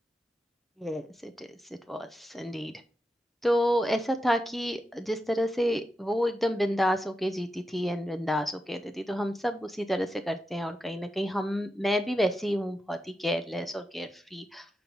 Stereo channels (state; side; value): normal; both; correlation 0.88